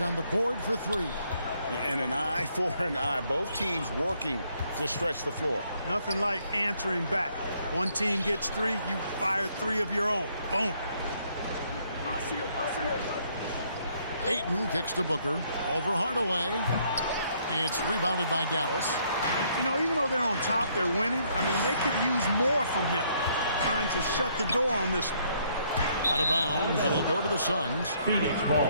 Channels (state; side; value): inverted; both; correlation -0.68